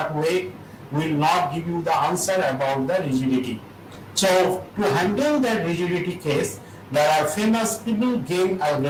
way, will not give you the answer about the rigidity. So to handle that rigidity case, there are famous People-Game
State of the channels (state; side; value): identical; both; correlation 1.00